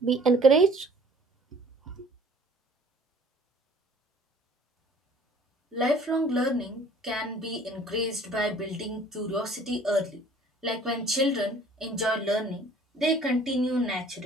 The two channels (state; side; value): normal; both; correlation 0.53